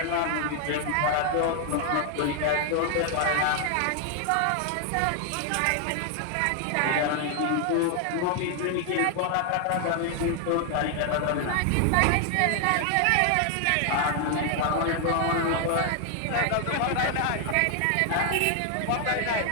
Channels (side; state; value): both; different; correlation 0.00